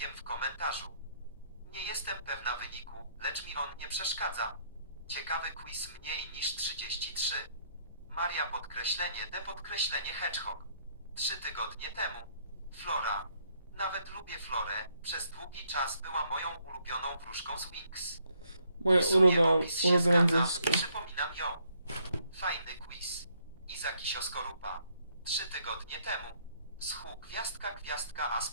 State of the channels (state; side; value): inverted; both; correlation -0.69